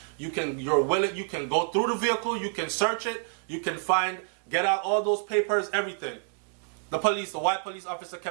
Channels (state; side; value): silent; left; digital silence